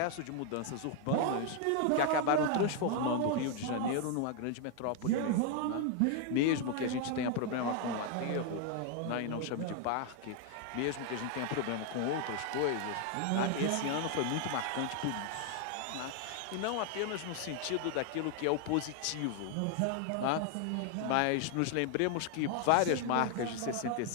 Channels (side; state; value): both; different; correlation 0.00